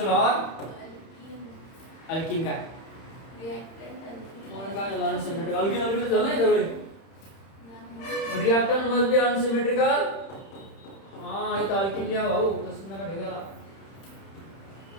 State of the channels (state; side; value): late; right; 31 ms